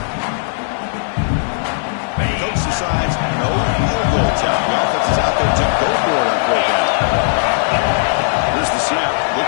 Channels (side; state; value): right; silent; digital silence